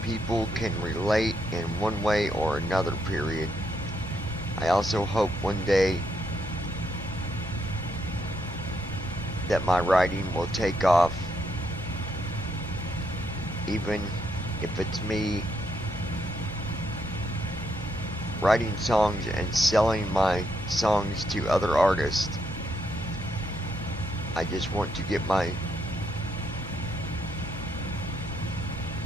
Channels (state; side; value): normal; both; correlation 0.77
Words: people can relate in one way or another, period. I also hope one day that my writing will take off, even if it's me writing songs and selling my songs to other artists. I just want to get my